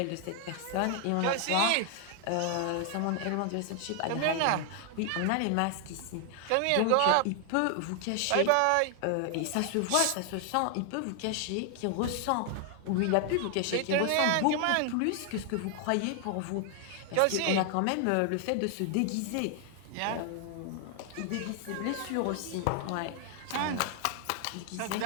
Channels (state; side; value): different; both; correlation 0.00